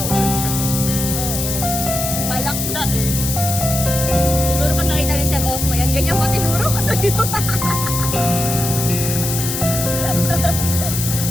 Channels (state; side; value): noise; left; hiss, 3 dB below the sound